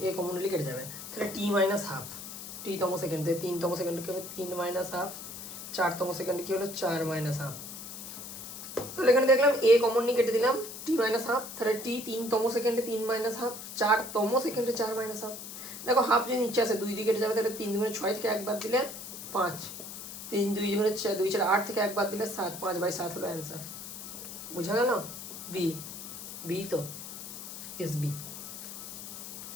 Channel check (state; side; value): noise; left; hiss, 10 dB below the sound